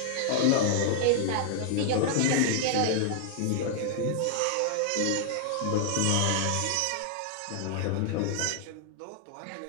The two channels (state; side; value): different; both; correlation -0.01